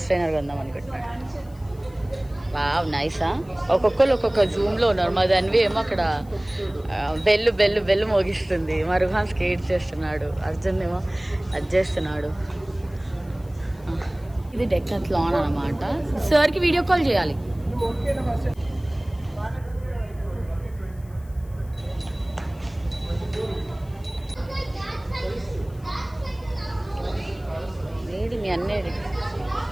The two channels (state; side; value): noise; left; hiss, 28 dB below the sound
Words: ట్రైనర్ కొందాం అనుకుంటున్నాడు. వావ్, నైసా. ఒక్కొక్కరు ఒక్కొక్క జూమ్లో ఉన్నారు. మా దానివి ఏమో అక్కడ బెల్లు మోగిస్తుంది. మా రుహాన్ స్కేట్ చేస్తున్నాడు, అర్జున్ ఏమో అది చేస్తున్నాడు. ఇది డెక్కత్లాన్ అనమాట. సార్కి వీడియో కాల్ చేయాలి. ఏది మీ అన్నేది?